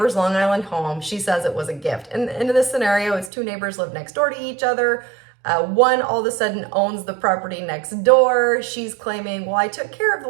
Long Island home. She says it was a gift. And in this scenario, it's two neighbors live next door to each other. One all of a sudden owns the property next door. She's claiming, well, I took care of the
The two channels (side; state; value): left; drops out; at 3.3 s